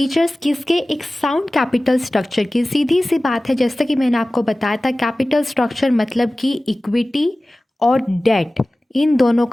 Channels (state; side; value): normal; both; correlation 0.97